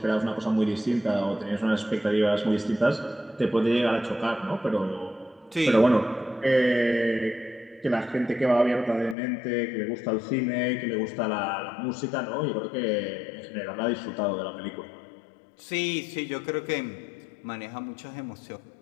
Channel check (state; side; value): drops out; right; at 9.2 s